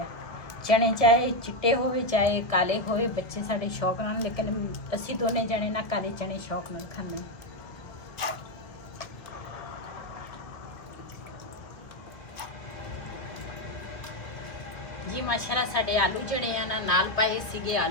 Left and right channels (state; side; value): late; right; 1.4 ms